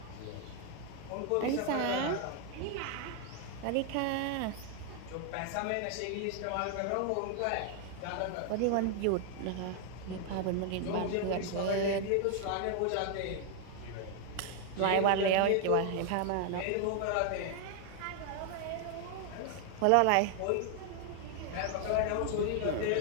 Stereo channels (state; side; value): different; both; correlation 0.00